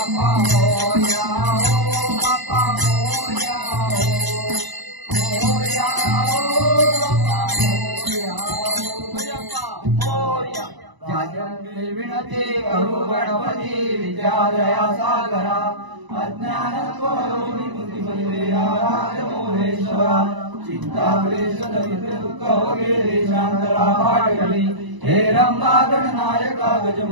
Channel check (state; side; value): late; left; 1.0 ms